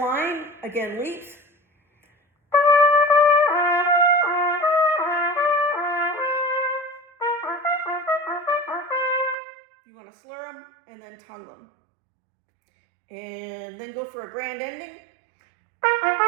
again, leaps. and then tongue them. And then go for a grand ending.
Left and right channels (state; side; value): drops out; left; at 9.3 s